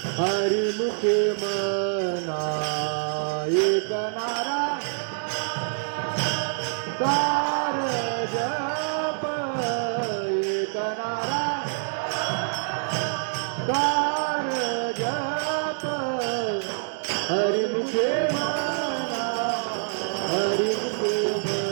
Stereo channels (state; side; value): silent; left; digital silence